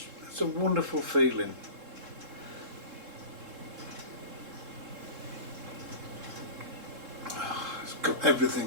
It's a wonderful feeling.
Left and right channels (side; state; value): left; late; 3.7 ms